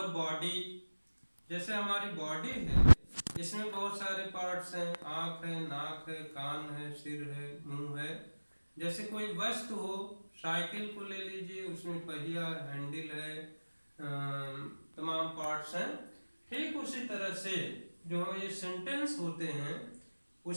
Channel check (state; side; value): inverted; both; correlation -1.00